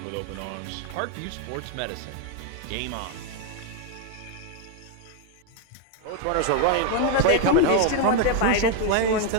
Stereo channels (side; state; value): both; different; correlation 0.01